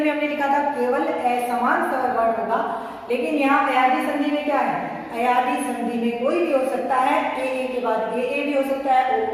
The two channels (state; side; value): identical; both; correlation 1.00